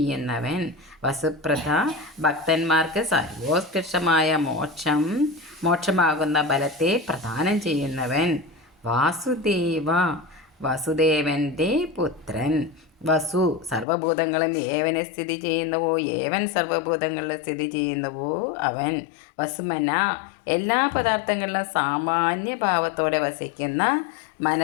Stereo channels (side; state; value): right; drops out; at 13.9 s